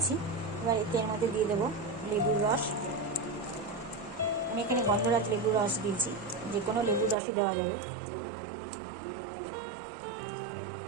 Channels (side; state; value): left; drops out; at 7.2 s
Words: এবার এর মধ্যে দিয়ে দেবো লেবুর রস। আমি এখানে গন্ধরাজ লেবুর রস দিয়েছি, যে কোনো লেবুর রসই দেওয়া যাবে।